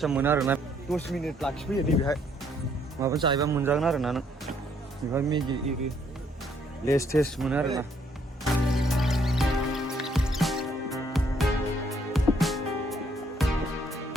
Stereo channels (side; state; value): both; normal; correlation 0.68